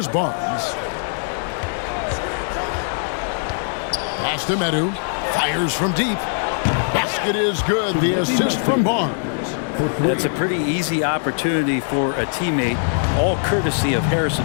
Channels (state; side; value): silent; right; digital silence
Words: Barnes. Pass to Medu. Fires from deep. Basket is good. The assist from Barnes. That's a pretty easy opportunity for a teammate, all courtesy of